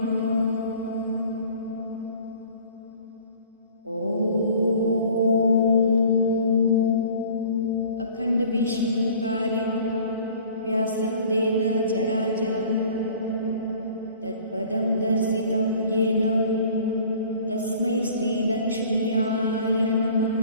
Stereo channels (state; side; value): inverted; both; correlation -0.49